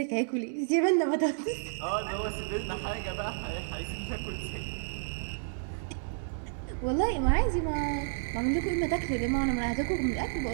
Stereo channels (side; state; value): left; silent; digital silence